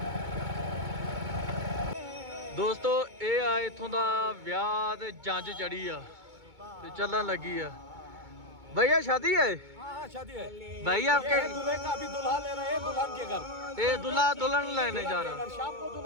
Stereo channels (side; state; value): left; late; 2.2 ms